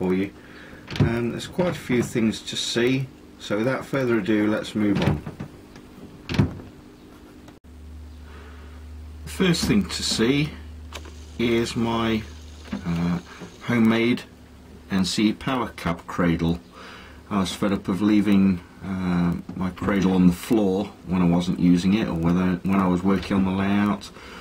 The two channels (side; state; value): both; identical; correlation 1.00